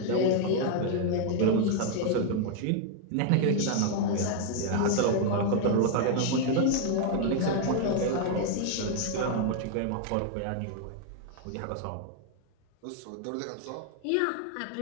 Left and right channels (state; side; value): different; both; correlation 0.00